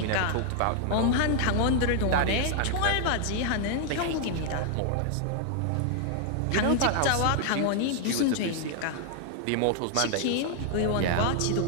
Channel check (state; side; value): different; both; correlation 0.00